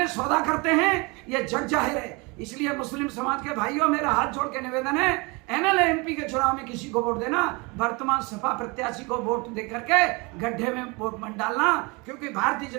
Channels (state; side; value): quieter; left; 27.6 dB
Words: सौदा करते हैं, ये जग जाहिर है। इसलिए मुस्लिम समाज के भाइयों, मेरा हाथ जोड़ के निवेदन है, एमएलए एमपी के चुनाव में किसी को वोट देना, वर्तमान सपा प्रत्याशी को वोट दे करके गड्ढे में वोट मत डालना। क्योंकि भारतीय